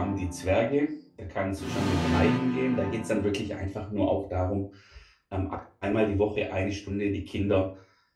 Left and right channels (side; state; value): both; identical; correlation 1.00